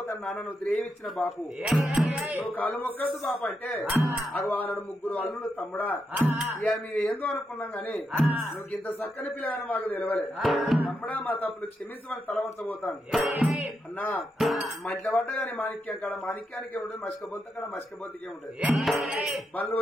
నాన్న నువ్వు ద్రేవించిన బాపు నువ్వు కాళ్ళు మొక్కద్దు బాపు అంటే అవి ఆనాడు ముగ్గురు అల్లుడు తమ్ముడా ఇక మేము ఏందో అనుకున్నాం గాని నువ్వు ఇంత చక్కని పిల్లగాని మాకు తెలవలే తమ్ముడా మా తప్పులు క్షమించమని తలవంచబోతాను అన్నా మధ్య పడ్డ గాని మాణిక్యం కాడ మాణిక్యానికే ఉంటుంది మసికబొంత కాడ మసికబొంతకే ఉంటుంది బళ్ళు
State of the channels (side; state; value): both; normal; correlation 0.84